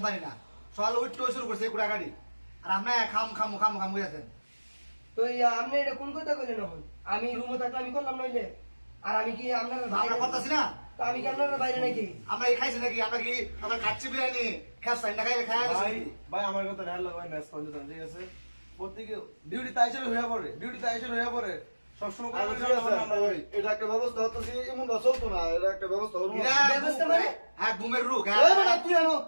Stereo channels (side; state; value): both; inverted; correlation -1.00